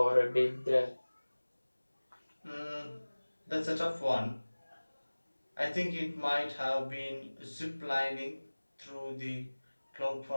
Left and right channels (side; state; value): both; inverted; correlation -1.00